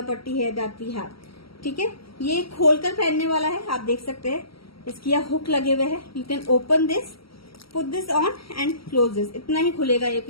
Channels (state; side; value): late; right; 0.75 ms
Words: पट्टी है दैट वी हैव, ठीक है। ये खोलकर पहनने वाला है, आप देख सकते हैं इसकी यहाँ हुक लगे हुए हैं। You can open this, put this on and close this, इतना ही खुलेगा ये